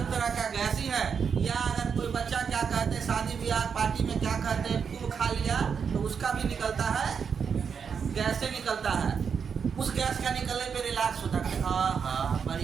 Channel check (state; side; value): quieter; left; 6.5 dB